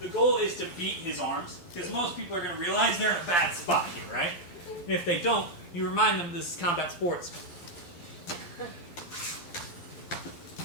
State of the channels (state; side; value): late; right; 12 ms